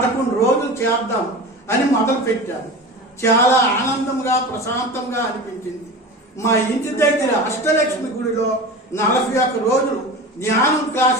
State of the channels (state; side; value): normal; both; correlation 0.32